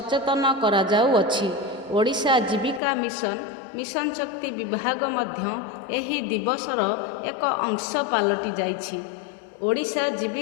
କରାଯାଉଅଛି। ଓଡ଼ିଶା ଜୀବିକା ମିଶନ ଶକ୍ତି ବିଭାଗ ମଧ୍ୟ ଏହି ଦିବସର ଏକ ଅଂଶ ପାଲଟି ଯାଇଛି। ଓଡ଼ିଶା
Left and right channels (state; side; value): drops out; right; at 2.8 s